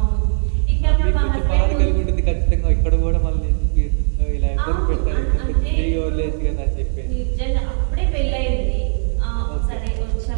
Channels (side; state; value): left; silent; digital silence